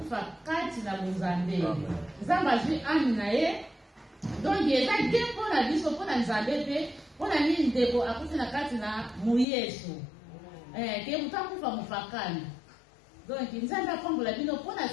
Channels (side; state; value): right; drops out; at 9.5 s